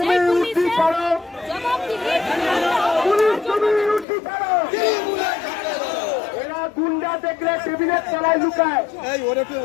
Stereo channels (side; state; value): right; drops out; at 4.0 s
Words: সেই পুলিশের জবাবদিহি এরা গুন্ডা দেখলে টেবিলের তলায় লুকায়।